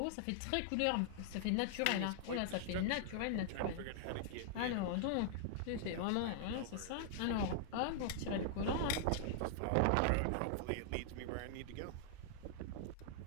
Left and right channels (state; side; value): different; both; correlation -0.01